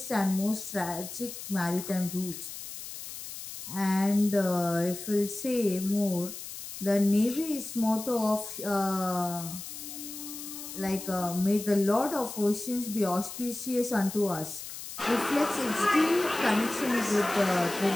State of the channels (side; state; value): left; noise; hiss, 10 dB below the sound